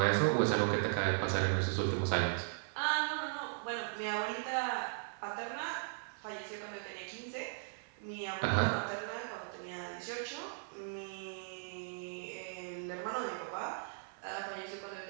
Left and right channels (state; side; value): silent; left; 53 dB below the other